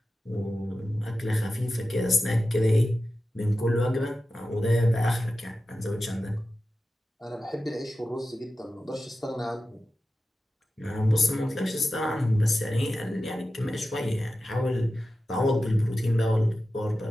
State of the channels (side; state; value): both; normal; correlation 0.93